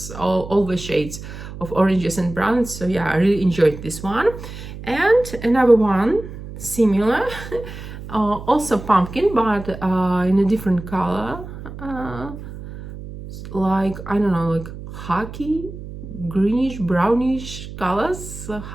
all the shades of oranges and browns. So yeah, I really enjoyed this one. And another one similar, also pumpkin, but in a different color, like, I don't know, like khaki, greenish, brownish colors,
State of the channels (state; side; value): noise; right; hum, 12 dB below the sound